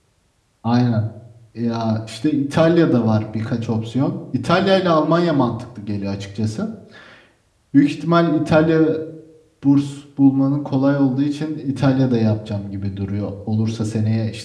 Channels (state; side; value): identical; both; correlation 1.00